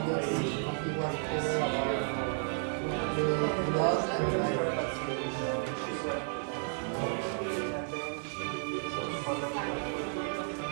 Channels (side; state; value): left; silent; 56 dB below the other